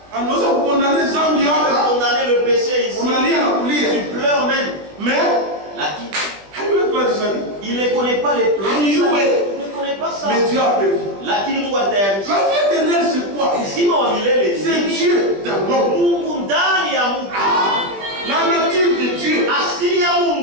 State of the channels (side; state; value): left; late; 20 ms